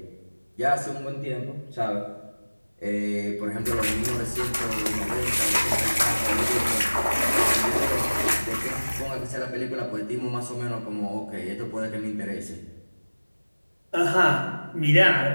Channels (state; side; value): inverted; both; correlation -1.00